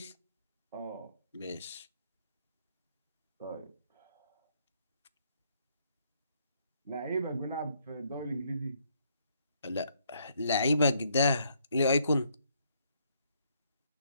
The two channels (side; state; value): both; inverted; correlation -0.70